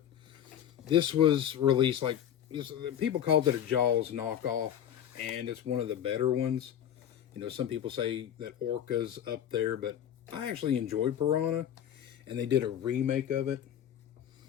this was released people called it a Jaws knockoff, and it's one of the better ones. Some people say that Orca's up there, but I actually enjoyed Piranha, and they did a remake of it,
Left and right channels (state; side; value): quieter; right; 10.0 dB